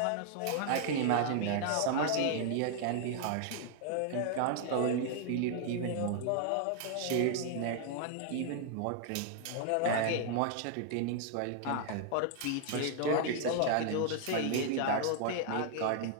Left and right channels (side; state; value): both; different; correlation 0.00